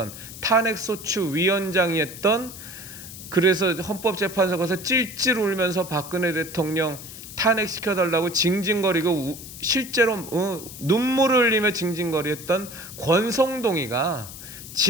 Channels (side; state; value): left; noise; hiss, 13 dB below the sound